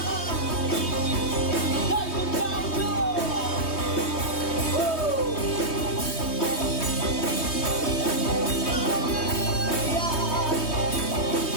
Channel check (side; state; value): right; late; 3.2 ms